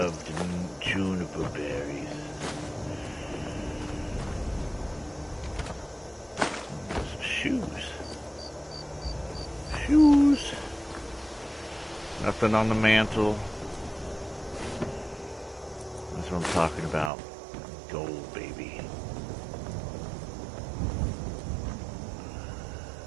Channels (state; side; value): drops out; left; at 17.1 s